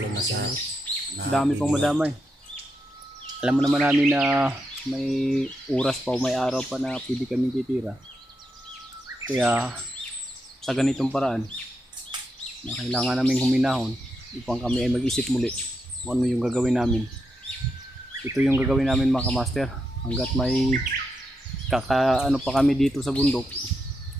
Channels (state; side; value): normal; both; correlation 0.84